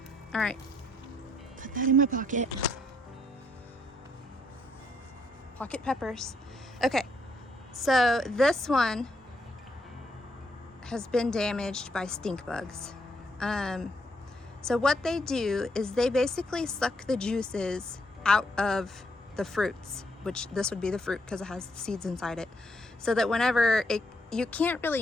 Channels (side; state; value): both; normal; correlation 0.73